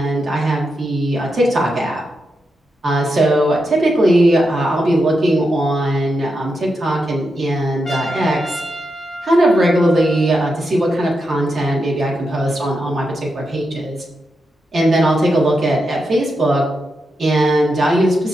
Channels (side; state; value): both; normal; correlation 0.86